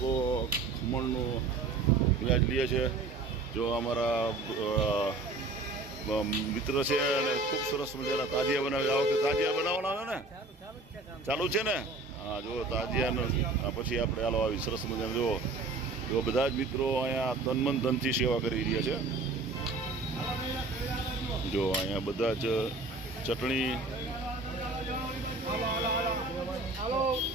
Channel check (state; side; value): quieter; left; 3.4 dB